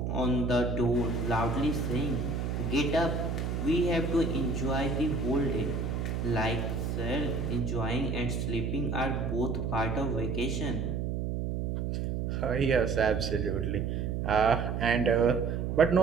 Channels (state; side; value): noise; right; hum, 1 dB below the sound